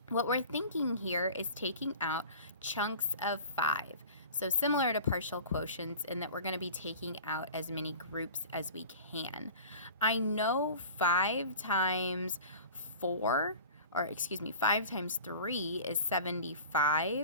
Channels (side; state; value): both; inverted; correlation -0.40